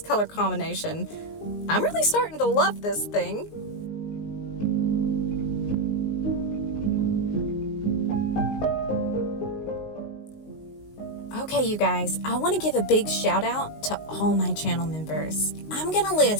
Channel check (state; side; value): late; right; 19 ms